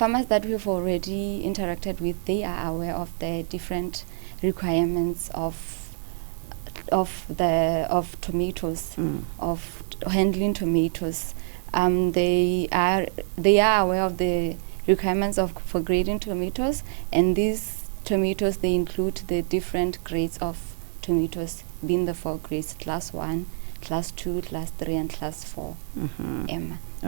we've already interacted with, they are aware of the different requirements of of tomatoes, of handling tomatoes. They are aware of the requirements for grading tomatoes, and these tomatoes, they include the different grades of tomatoes, being the 4 grades: class 1, class 2, class 3, and class 4.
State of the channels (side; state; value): left; silent; 61 dB below the other